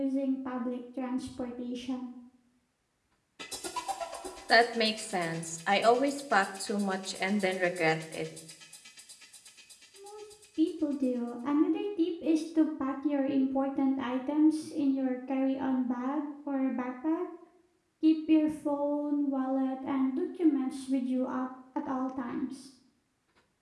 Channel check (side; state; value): both; identical; correlation 1.00